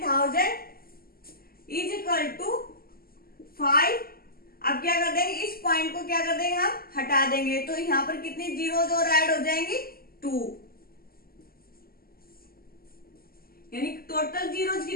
इज इक्वल टू 5। अब क्या कर देंगे, इस पॉइंट को क्या कर देंगे, हम हटा देंगे, तो यहां पर कितनी जीरोज और ऐड हो जाएंगी, 2, यानी टोटल जीरोज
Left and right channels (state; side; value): late; right; 0.43 ms